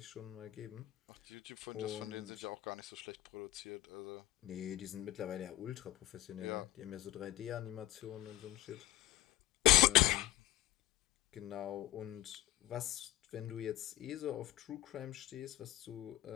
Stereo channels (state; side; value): quieter; right; 15.8 dB